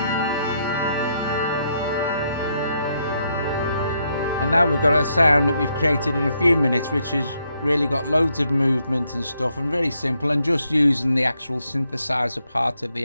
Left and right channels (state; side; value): inverted; both; correlation -0.77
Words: And now we've got a sound that we've created in a few minutes, which has really got loads of movement and stuff, and very simple, and just using the actual synthesizer part of